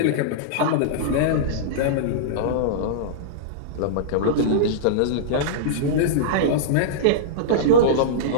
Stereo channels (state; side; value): different; both; correlation -0.04